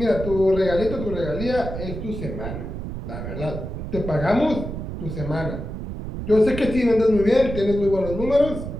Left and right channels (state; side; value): noise; right; rumble, 7 dB below the sound